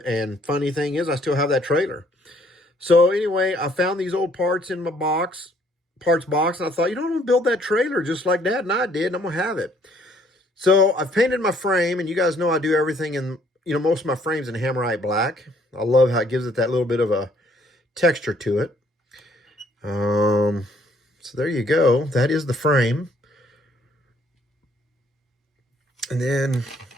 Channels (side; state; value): both; normal; correlation 0.64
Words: And funny thing is, I still have that trailer. So anyway, I found these old parts in my parts box, and I thought, I'm going to build that trailer just like Dad and I did, and I'm going to have it. So I've painted my frame, and you guys know I do everything in, most of my frames in Hammerite black. I love how it gives it that little bit of a texture to it. So there you go. That is the frame. And then